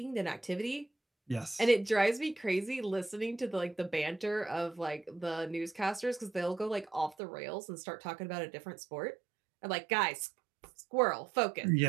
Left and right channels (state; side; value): drops out; left; at 7.2 s